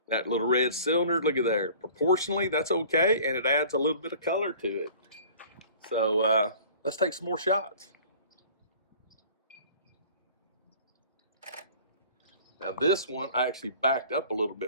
That little red cylinder, look at there. Proportionally, that's okay, and it adds a little bit of color to it. So let's take some more shots. Now this one, I actually backed up a little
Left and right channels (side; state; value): both; inverted; correlation -0.47